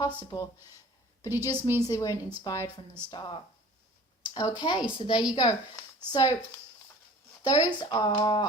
but it just means they weren't inspired from the start. Okay, so there you go. So those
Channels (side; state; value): both; normal; correlation 0.46